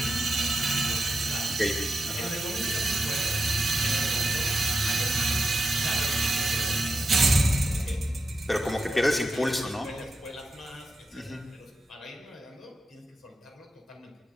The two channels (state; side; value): normal; both; correlation 0.88